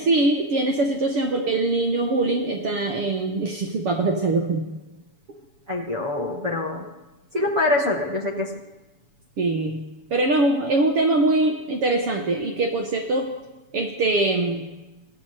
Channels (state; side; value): late; left; 7.1 ms